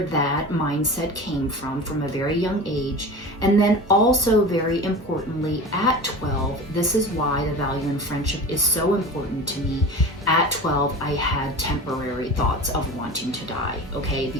that mindset came from a very young age. And then also, very importantly, at 12, this is why the value in friendship is so important to me. At 12, I had temporary thoughts of wanting to die, okay?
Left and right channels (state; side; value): normal; both; correlation 0.33